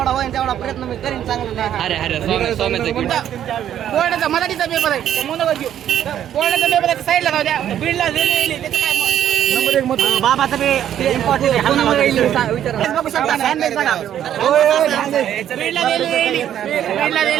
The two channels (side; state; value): left; quieter; 10.6 dB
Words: होईल तेवढा प्रयत्न मी करीन चांगलं बोर्डाचा मराठीचा पेपर आहे मनोगत घेऊ बोर्डाचा पेपर आहे साईडला जाऊ द्या बीडला रेल्वे त्याचं काय नंबर 1 मत बाबाचं ते इम्पॉर्टंट